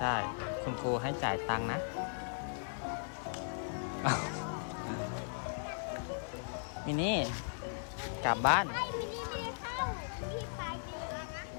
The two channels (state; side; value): silent; right; 53 dB below the other